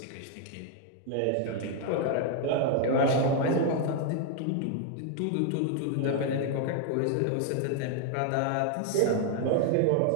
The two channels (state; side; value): different; both; correlation 0.00